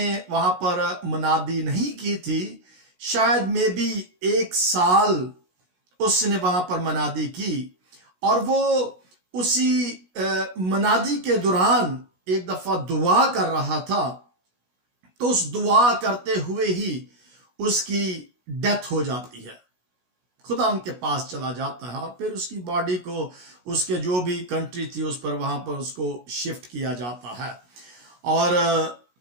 वहां पर मुनादी नहीं की थी, शायद में भी 1 साल उसने वहां पर मुनादी की। और वो उसी मुनादी के दौरान एक दफा दुआ कर रहा था, तो उस दुआ करते हुए ही उसकी डेथ हो जाती है। खुदा उनके पास चला जाता है और फिर उसकी बॉडी को उसके जो भी कंट्री थी उस पर वहां पर उसको शिफ्ट किया जाता है। और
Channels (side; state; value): left; late; 16 ms